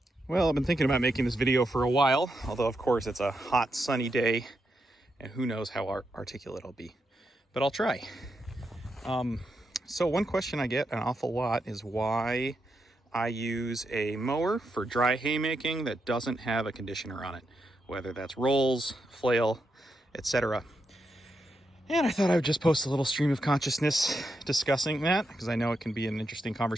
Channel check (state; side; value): normal; both; correlation 0.84